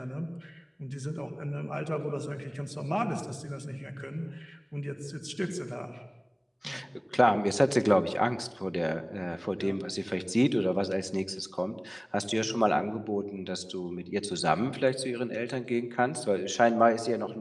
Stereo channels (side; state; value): both; identical; correlation 1.00